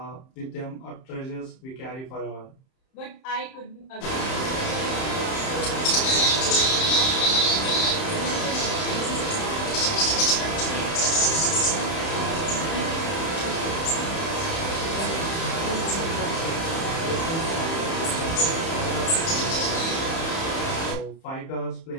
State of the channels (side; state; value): right; late; 31 ms